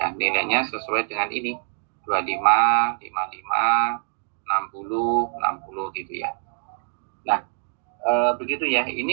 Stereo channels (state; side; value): silent; left; digital silence